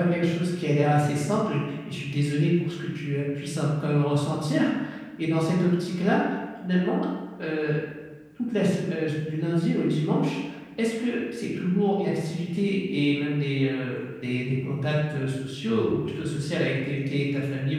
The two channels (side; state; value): both; identical; correlation 1.00